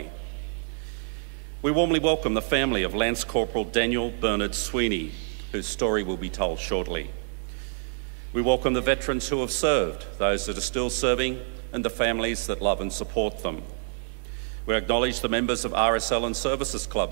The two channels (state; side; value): silent; left; 60 dB below the other